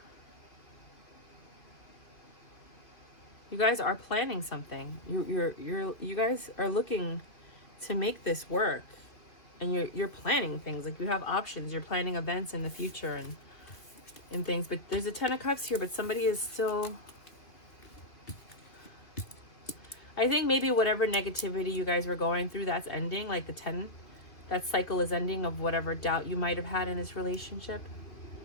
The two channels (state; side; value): late; right; 2.2 ms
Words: You guys are planning something. You guys are looking to make this work, and you're planning things. Like, you have options. You're planning events in the future and things. But there's a 10 of Cups here, but somebody is still... I think maybe whatever negativity you guys were going through, that's ending. Like the 10, that cycle is ending of whatever doubt you might have had in this relationship.